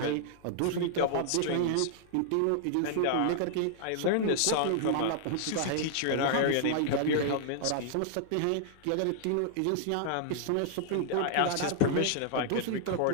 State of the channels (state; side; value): different; both; correlation -0.01